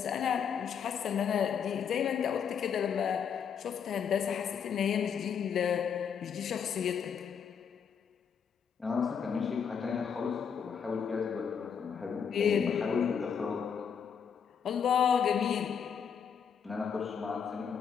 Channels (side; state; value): right; quieter; 7.2 dB